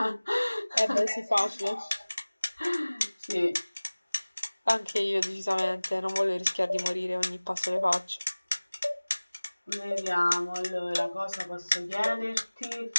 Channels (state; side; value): inverted; both; correlation -1.00